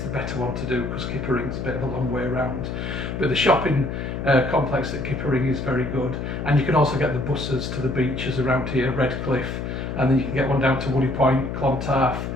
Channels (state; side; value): noise; left; hum, 5 dB below the sound